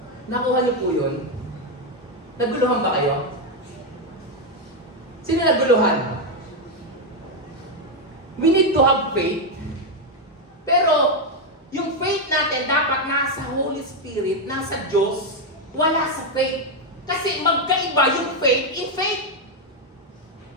Nakuha niyo po yun? Naguluhan ba kayo? Sino naguluhan? We need to have faith, pero yung faith natin dapat nasa Holy Spirit, nasa Diyos, wala sa faith. Kasi magkaiba yung faith in faith.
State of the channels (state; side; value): normal; both; correlation 0.04